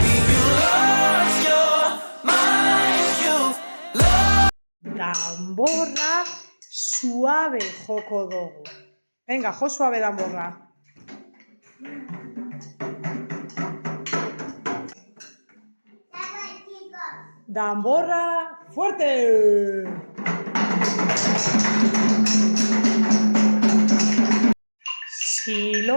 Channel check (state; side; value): inverted; both; correlation -1.00